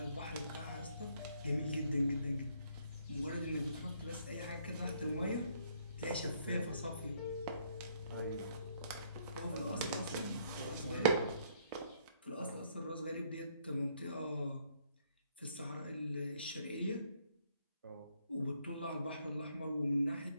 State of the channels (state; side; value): inverted; both; correlation -0.68